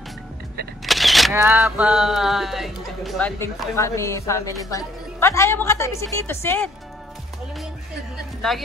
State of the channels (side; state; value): both; normal; correlation 0.64